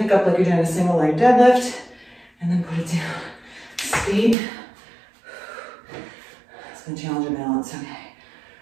up like you're doing a single leg deadlift, and then put it down, skate. It's gonna challenge your balance, okay.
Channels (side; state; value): left; drops out; at 4.4 s